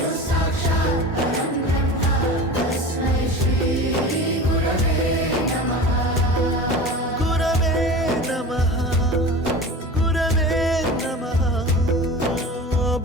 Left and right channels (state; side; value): normal; both; correlation 0.34